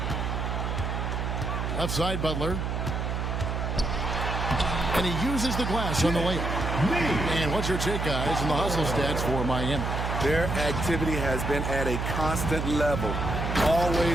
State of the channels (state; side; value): noise; right; hum, 2 dB below the sound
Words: Left side, Butler. And he uses the glass on the layup. And what's your take, guys, in the hustle stats for Miami? Their activity has been at a constant level.